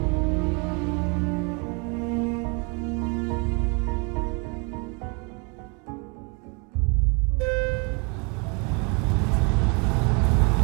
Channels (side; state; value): left; quieter; 33.0 dB